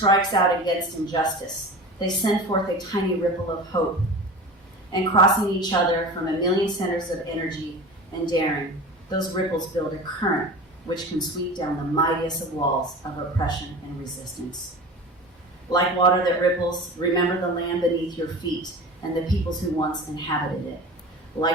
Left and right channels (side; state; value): both; normal; correlation 0.34